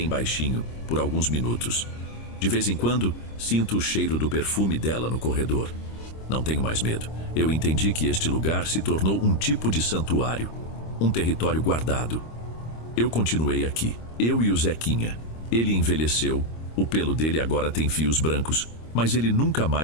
baixinho, por alguns minutos. De vez em quando, sinto o cheiro do perfume dela no corredor. Não tenho mais medo. Eu entendi que este lugar se tornou um tipo de santuário, um território guardado. Eu continuei aqui, eu e o Zequinha. Ele envelheceu, o pelo dele agora tem fios brancos, mas ele nunca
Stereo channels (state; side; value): late; right; 26 ms